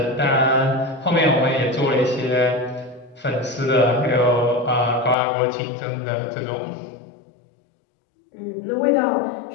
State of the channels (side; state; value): right; drops out; at 5.2 s